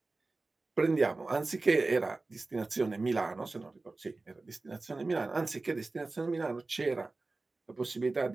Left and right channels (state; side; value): quieter; left; 3.4 dB